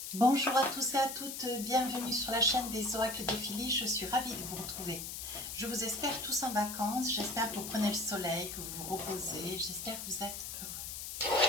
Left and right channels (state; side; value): noise; left; hiss, 7 dB below the sound